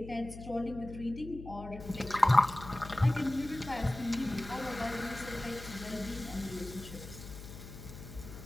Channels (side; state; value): left; noise; hum, 13 dB below the sound